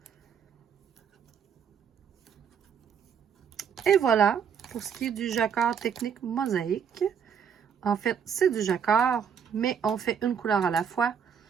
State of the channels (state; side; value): quieter; left; 7.5 dB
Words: Et voilà, pour ce qui est du jacquard technique mosaïque. En fait, c'est du jacquard, mais on fait une couleur à la fois.